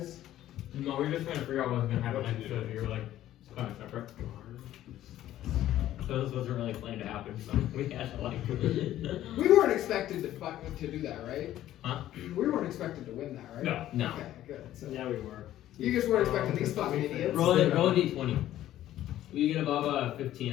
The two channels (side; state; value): right; quieter; 13.2 dB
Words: No, we were just trying to figure out what was gonna happen next, so you were like, it's kind of separate. So this wasn't really planned to happen, so we had to like. We weren't expected to do that, right? Huh? We weren't expected to win that, right? No. No. Okay, good. So Yeah, we were. you just weren't expecting these fucking idiots. Roll a d20. You get above